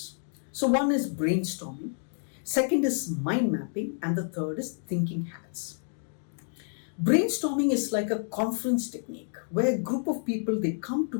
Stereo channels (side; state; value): right; silent; digital silence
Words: So one is brainstorming, second is mind mapping, and the third is thinking hats. Brainstorming is like a conference technique where a group of people, they come